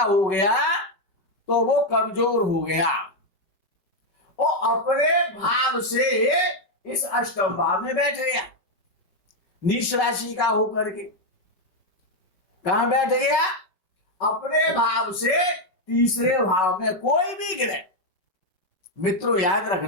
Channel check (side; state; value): right; late; 5.3 ms